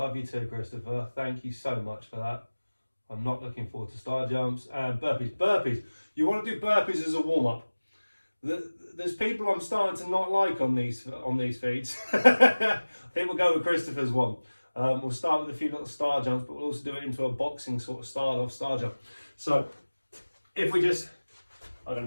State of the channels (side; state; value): both; inverted; correlation -1.00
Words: you too, Christopher. Thank you so much for that. I'm not looking forward to star jumps and burpees. Burpees. You want to do burpees as a warm-up. There's people I'm starting to not like on these feeds. I think we'll go with Christopher's one. We'll start with a few little star jumps, but we'll also do it into a boxing sort of style of star jump. So if we just, I'm